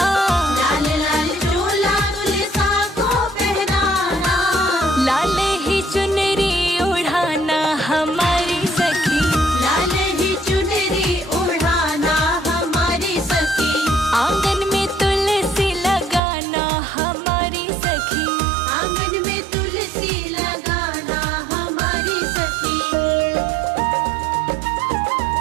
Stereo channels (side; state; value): left; drops out; at 16.2 s